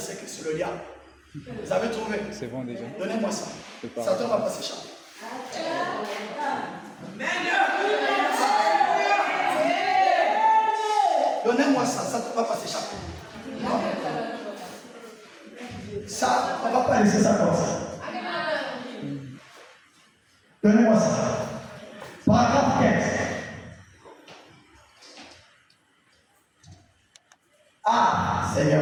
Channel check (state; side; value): identical; both; correlation 1.00